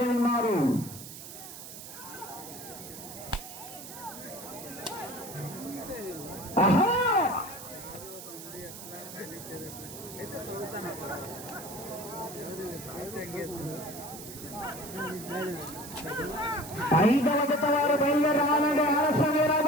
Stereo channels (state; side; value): noise; right; hiss, 12 dB below the sound